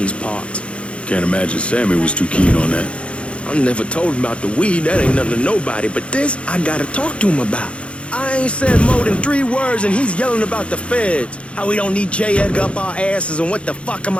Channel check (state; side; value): late; right; 0.060 ms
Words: parts. Can't imagine Sammy was too keen on that. I never told him about the weed. That ain't nothing to nobody. But this, I gotta talk to him about. I ain't said more than 3 words and he's yelling about the feds. How we don't need J. Edgar up our asses, and what the fuck am